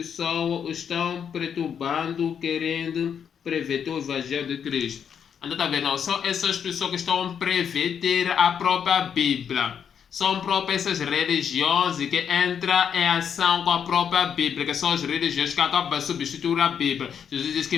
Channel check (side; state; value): right; quieter; 7.7 dB